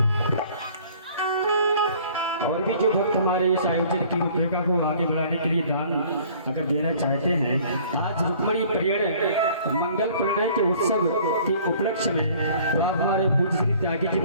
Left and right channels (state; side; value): inverted; both; correlation -0.53